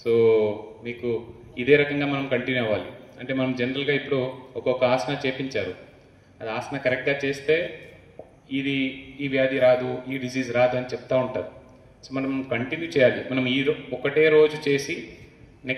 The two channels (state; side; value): identical; both; correlation 1.00